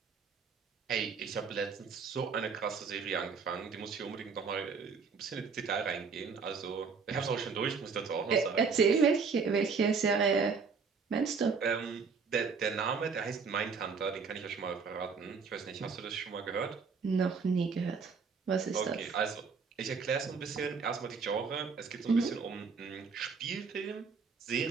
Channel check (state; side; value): quieter; left; 5.3 dB